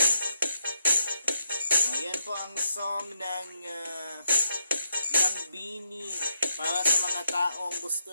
Ayan po ang song ng Bini para sa mga taong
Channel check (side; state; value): both; inverted; correlation -0.79